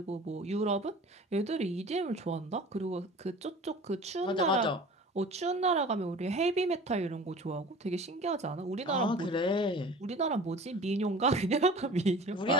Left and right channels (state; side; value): normal; both; correlation 0.41